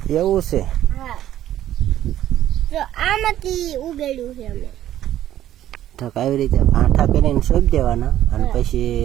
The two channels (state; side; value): quieter; left; 12.4 dB